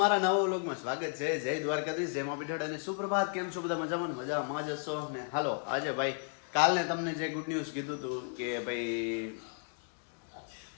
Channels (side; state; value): right; silent; 55 dB below the other